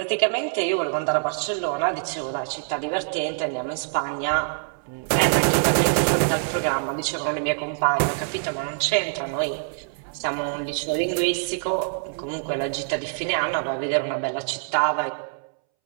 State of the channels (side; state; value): left; silent; 62 dB below the other